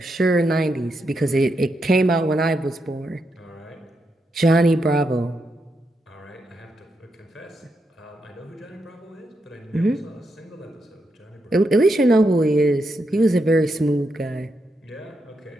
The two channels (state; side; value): normal; both; correlation 0.83